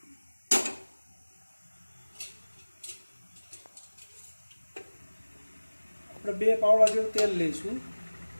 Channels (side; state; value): both; inverted; correlation -1.00